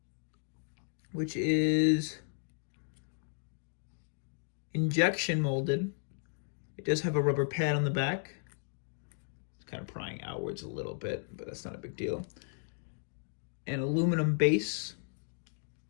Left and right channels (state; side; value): silent; right; digital silence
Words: which is injection molded. It does have a rubber pad on the back. It's kind of prying outwards a little bit, but that's not a big deal. An aluminum base.